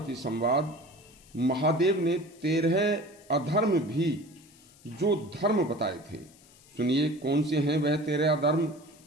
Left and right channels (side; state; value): left; noise; hiss, 26 dB below the sound